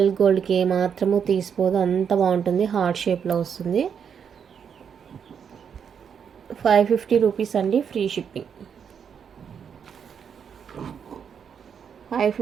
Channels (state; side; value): quieter; left; 7.3 dB